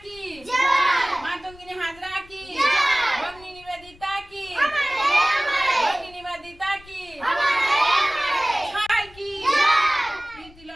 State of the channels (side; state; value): left; noise; rumble, 23 dB below the sound